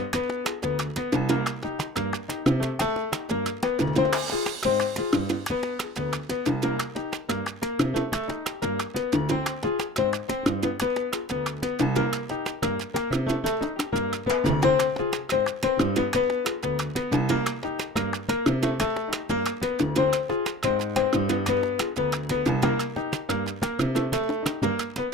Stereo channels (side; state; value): both; normal; correlation 0.49